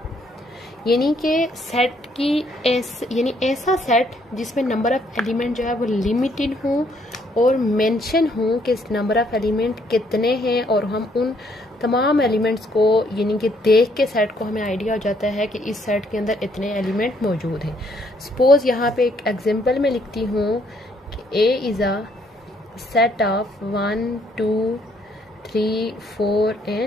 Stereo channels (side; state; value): both; normal; correlation 0.68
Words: यानी कि सेट की यानी ऐसा सेट जिसमें नंबर ऑफ एलिमेंट जो है वो लिमिटेड हो और मेंशन हो कि नंबर ऑफ एलिमेंट कितने हैं, और हम उन तमाम एलिमेंट्स को यानी कि देख के सेट को हमें आइडिया हो जाता है कि इस सेट के अंदर इतने एलिमेंट मौजूद हैं। सपोज यहाँ पे एक एग्जांपल में लिखती हूँ कि A is a set of 1 2 3 4